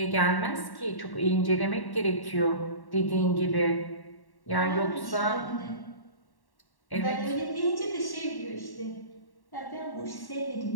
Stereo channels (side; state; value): right; late; 1.1 ms